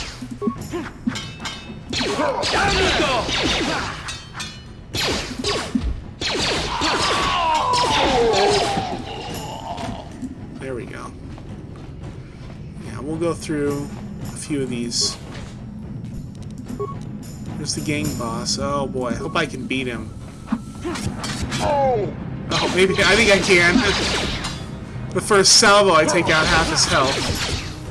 There we go. Yeah, we'll go through a few of these. There's the gang boss. Oh boy, I hope I can beat him. Oh, maybe, I think I can. The first salvo, I take out half his health.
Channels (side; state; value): both; identical; correlation 1.00